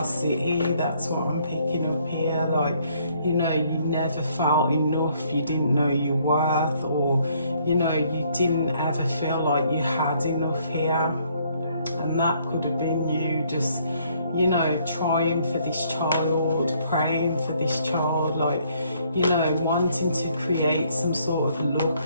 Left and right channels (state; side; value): inverted; both; correlation -0.66